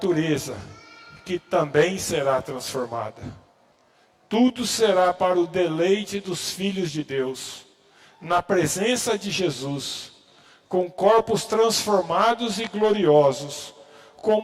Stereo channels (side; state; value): both; identical; correlation 1.00